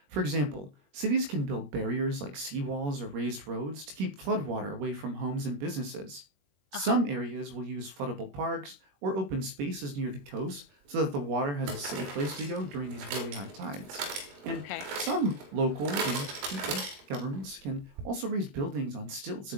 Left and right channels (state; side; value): late; left; 21 ms